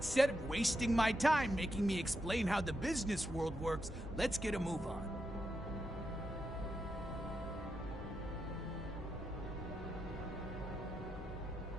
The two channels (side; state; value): both; normal; correlation 0.85